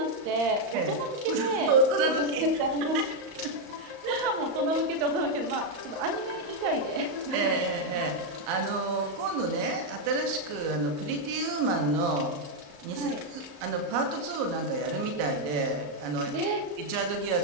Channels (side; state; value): left; late; 34 ms